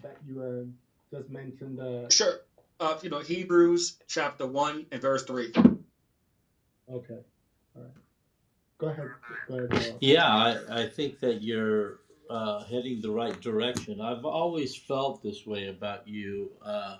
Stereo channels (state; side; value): identical; both; correlation 1.00